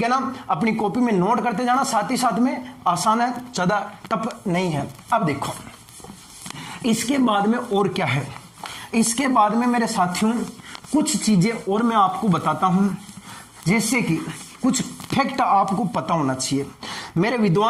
है ना? अपनी कॉपी में नोट करते जाना, साथ ही साथ में आसान है, ज्यादा टफ नहीं है। अब देखो इसके बाद में और क्या है। इसके बाद में मेरे साथियों कुछ चीजें और मैं आपको बताता हूं, जैसे कि कुछ फैक्ट आपको पता होना चाहिए। मेरे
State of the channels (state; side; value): identical; both; correlation 1.00